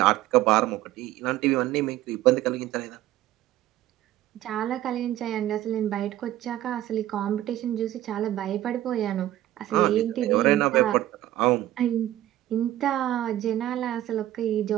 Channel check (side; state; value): left; quieter; 13.9 dB